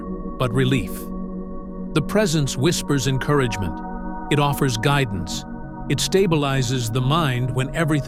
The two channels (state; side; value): identical; both; correlation 1.00